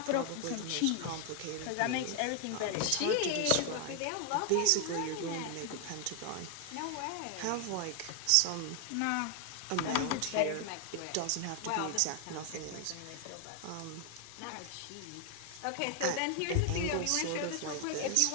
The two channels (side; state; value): both; different; correlation 0.00